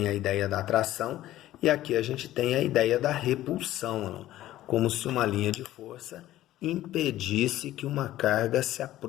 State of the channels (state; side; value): quieter; right; 14.5 dB